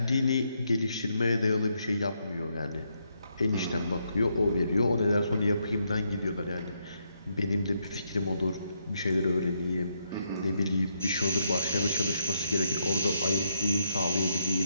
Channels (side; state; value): both; inverted; correlation -0.78